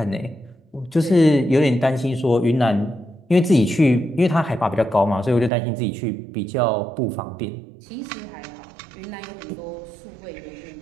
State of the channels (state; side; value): drops out; left; at 5.5 s